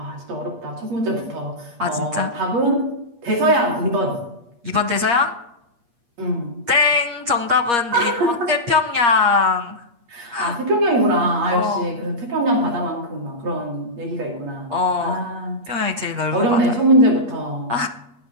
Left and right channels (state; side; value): late; left; 8.5 ms